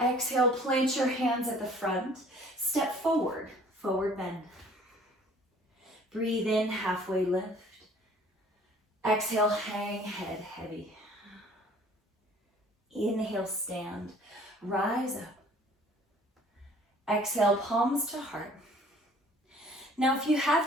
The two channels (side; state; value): both; normal; correlation 0.53